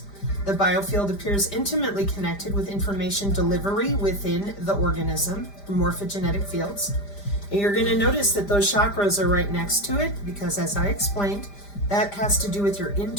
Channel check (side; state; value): right; late; 5.0 ms